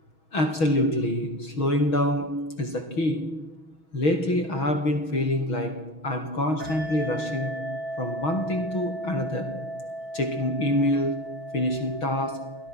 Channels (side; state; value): right; late; 6.3 ms